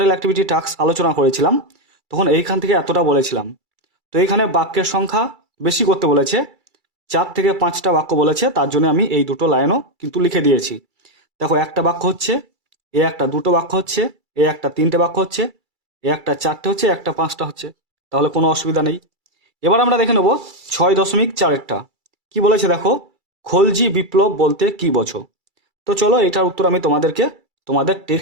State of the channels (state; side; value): late; left; 2.3 ms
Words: অ্যাক্টিভিটি টাস্ক আলোচনা করেছিলাম তখন এইখান থেকে এতটা বলেছিলাম। তো এইখানে বাক্যের সংখ্যা বেশি করতে বলেছে, 4 থেকে 5টা বাক্য বলেছে, তার জন্য আমি এই দুটো লাইনও কিন্তু লিখে দিয়েছি। দেখো একটা বাক্য হচ্ছে, এ একটা দুটো বাক্য হচ্ছে, এ একটা 3টে বাক্য হচ্ছে, এ একটা 4টে হচ্ছে, একটা 5টা হচ্ছে, তাহলে কোনো অসুবিধা নেই। এবার আমরা দেখে নেব 6.4-এরটা কি বলেছে দেখো, খলজি বিপ্লব বলতে কি বোঝো? তো চলো এটার উত্তর আমি তোমাদেরকে তোমাদের